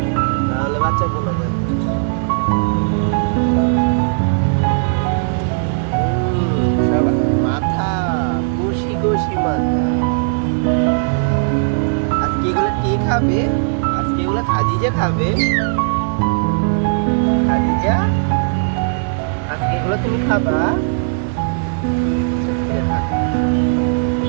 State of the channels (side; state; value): left; silent; 63 dB below the other